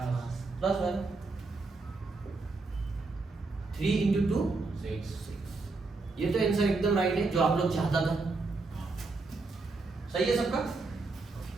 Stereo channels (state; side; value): quieter; left; 3.7 dB